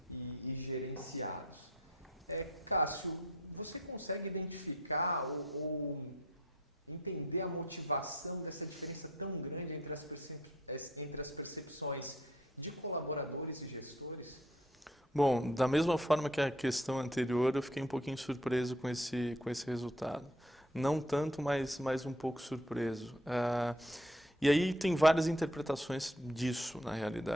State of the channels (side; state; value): both; normal; correlation 0.59